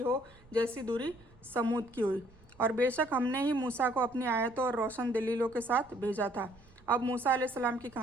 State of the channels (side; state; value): right; noise; rumble, 27 dB below the sound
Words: जैसी दूरी समूद की हुई। और बेशक हमने ही मूसा को अपनी आयतों और रोशन दलीलों के साथ भेजा था। अब मूसा अलैहिस्सलाम की